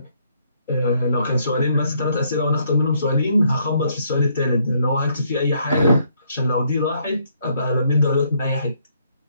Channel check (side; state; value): both; inverted; correlation -0.70